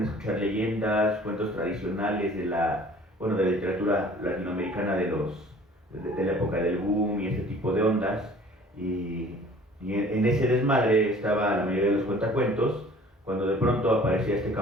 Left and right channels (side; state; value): both; normal; correlation 0.50